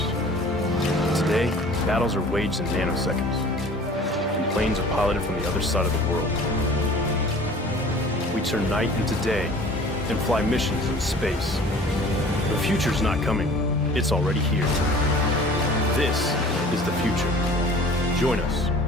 Today, battles are waged in nanoseconds, and planes are piloted from the other side of the world. We turn night into day and fly missions in space. The future's not coming, it's already here. This is the future. Join us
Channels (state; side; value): normal; both; correlation 0.46